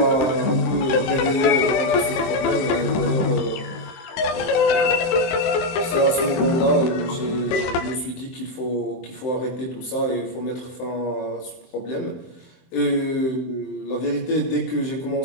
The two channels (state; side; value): late; right; 23 ms